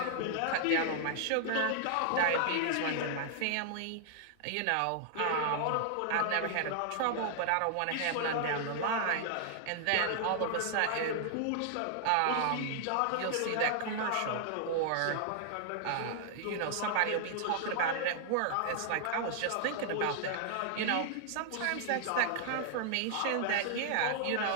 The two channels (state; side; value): different; both; correlation 0.00